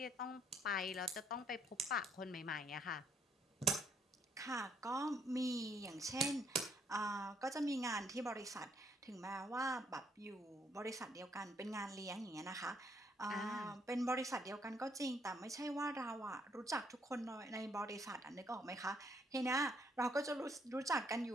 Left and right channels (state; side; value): normal; both; correlation 0.69